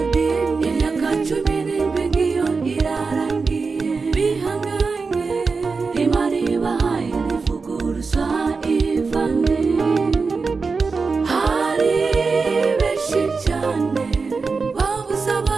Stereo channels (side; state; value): left; quieter; 4.5 dB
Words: imyaka 17 ngiyo irarangiye bihanganye Imana ibahaye ntivuguruza Ivane hari benshi cyane babuze